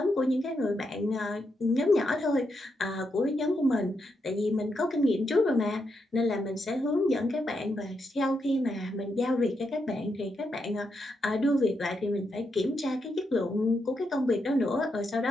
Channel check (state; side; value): normal; both; correlation 0.82